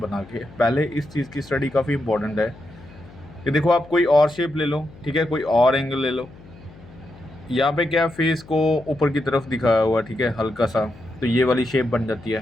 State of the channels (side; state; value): left; noise; hum, 21 dB below the sound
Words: के। पहले इस चीज़ की स्टडी काफ़ी इंपॉर्टेंट है कि देखो आप कोई और शेप ले लो, ठीक है, कोई और एंगल ले लो। यहाँ पे क्या फेस को ऊपर की तरफ दिखाया हुआ, ठीक है, हल्का सा, तो ये वाली शेप बन जाती